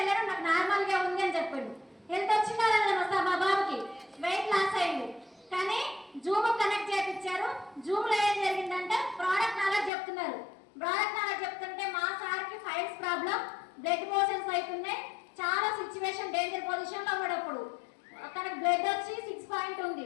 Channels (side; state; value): right; drops out; at 9.9 s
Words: నాకు నార్మల్ గా ఉంది అని చెప్పాడు. హెల్త్ వచ్చిందా మా బాబుకి వెయిట్ లాస్ అయ్యింది. కానీ జూమ్ కనెక్ట్ చేయించారు. జూమ్ లో ఏం జరిగిందంటే ప్రోడక్ట్ నాలెడ్జ్ చెప్తున్నారు. ప్రోడక్ట్ నాలెడ్జ్ చెప్తుంటే మా సార్కి ఫైల్స్ ప్రాబ్లం, బ్లడ్ మోషన్స్ అవుతున్నాయి, చాలా సిచ్యువేషన్ డేంజర్ పొజిషన్ లో ఉన్నప్పుడు తనకు బ్లడ్ వచ్చి 6 పాయింట్ ఉంది.